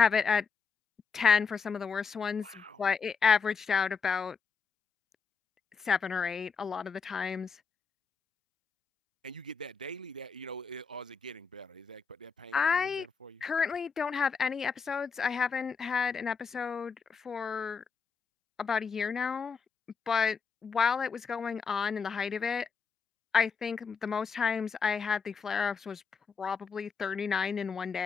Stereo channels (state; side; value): quieter; right; 5.6 dB